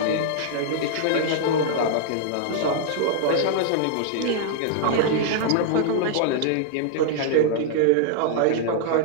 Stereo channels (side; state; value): both; different; correlation -0.01